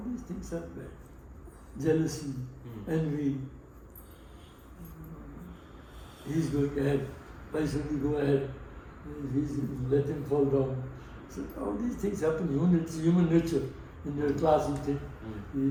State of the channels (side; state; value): both; identical; correlation 1.00